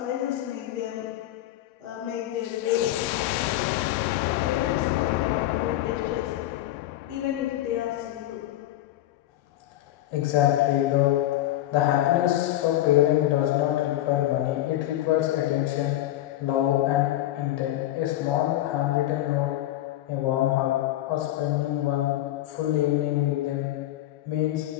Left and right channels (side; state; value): right; quieter; 14.4 dB